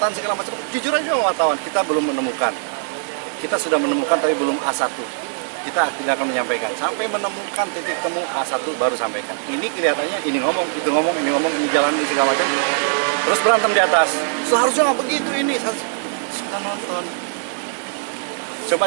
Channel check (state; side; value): silent; left; digital silence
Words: segala macam, jujur aja wartawan, kita belum menemukan. Kita sudah menemukan tapi belum A1. Kita tidak akan menyampaikan. Sampai menemukan titik temu A1 baru sampaikan. Ini kelihatannya ini ngomong, itu ngomong, ini jalan, ini segala macam. Terus berantem di atas. Seharusnya nggak begitu ini. Sudah nonton. Coba